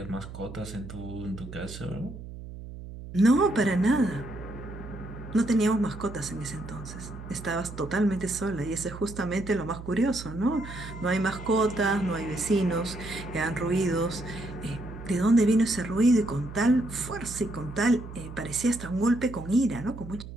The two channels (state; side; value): noise; right; hum, 12 dB below the sound